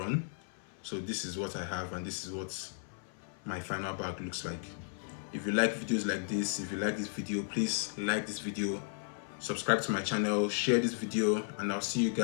So this is what I have, and this is what my final bag looks like. If you like videos like this, if you like this video, please like this video, subscribe to my channel, share this video, and I'll see you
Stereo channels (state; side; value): silent; right; 55 dB below the other